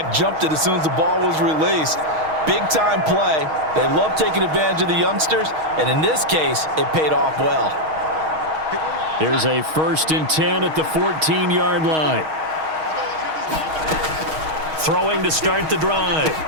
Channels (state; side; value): late; left; 6.4 ms